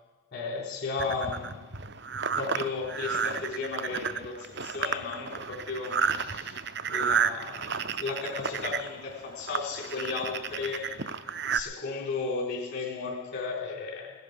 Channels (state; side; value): normal; both; correlation 0.17